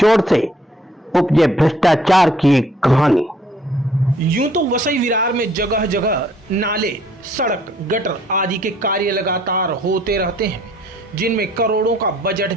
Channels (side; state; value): both; normal; correlation 0.61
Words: से उपजे भ्रष्टाचार की एक कहानी। यूं तो वसई विरार में जगह जगह नाले, सड़क, गटर आदि के कार्य लगातार होते रहते हैं जिनमें करोड़ों का बजट